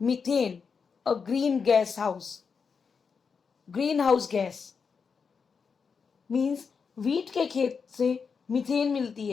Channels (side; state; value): right; quieter; 5.7 dB